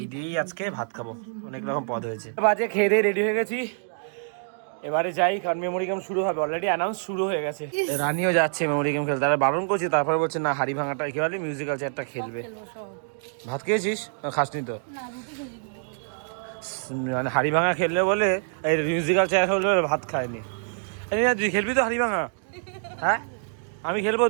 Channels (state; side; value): silent; left; digital silence